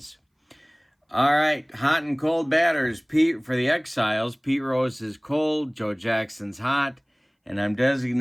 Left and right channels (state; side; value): identical; both; correlation 1.00